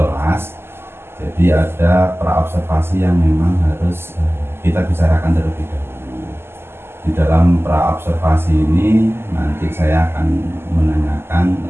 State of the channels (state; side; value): late; left; 0.12 ms